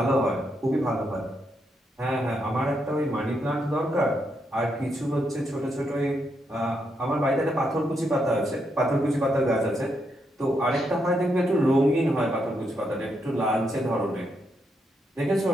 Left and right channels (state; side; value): normal; both; correlation 0.80